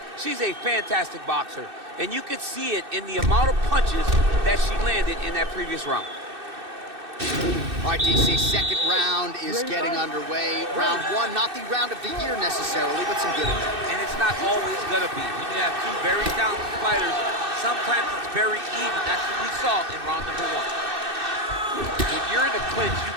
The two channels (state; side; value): late; left; 2.6 ms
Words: She's a fantastic boxer, and you could see it in the amount of punches that she landed in that previous round. All right, DC, second round is getting underway. Round one, not the round of the year necessarily, but some good in there. And it's not always going to be. When you have two very talented fighters, sometimes it's very even. That's what we saw in round number one. When you're in a clinch, you